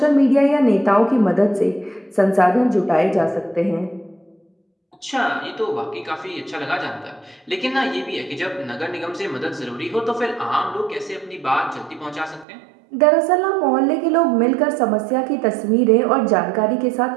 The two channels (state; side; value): drops out; left; at 12.5 s